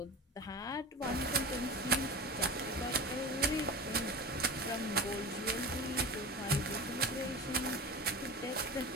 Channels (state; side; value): normal; both; correlation 0.30